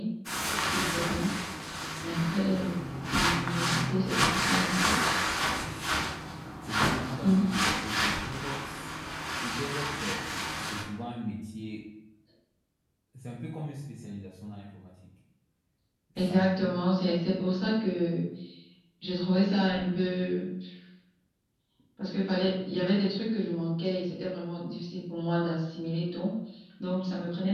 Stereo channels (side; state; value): both; identical; correlation 1.00